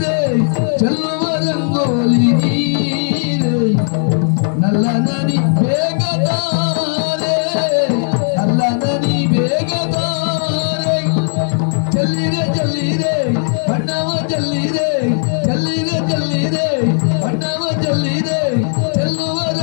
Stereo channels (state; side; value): silent; right; digital silence